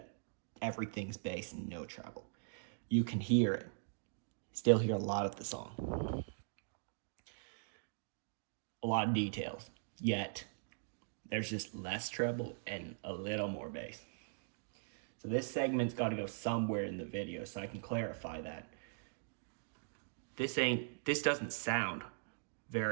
everything's bass and no treble. You can hear it. Still hear a lot of the song. A lot of details, yet there's just less treble and a little more bass. So this segment's got to go somewhere in the video so I can clarify that. This doesn't sound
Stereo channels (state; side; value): silent; left; digital silence